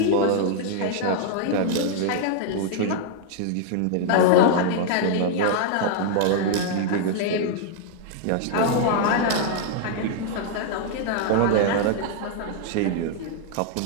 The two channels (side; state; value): both; different; correlation 0.00